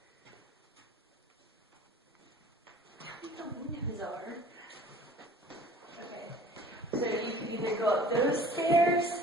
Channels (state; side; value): normal; both; correlation 0.48